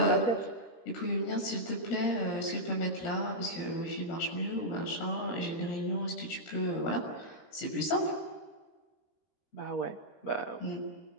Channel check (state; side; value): late; right; 13 ms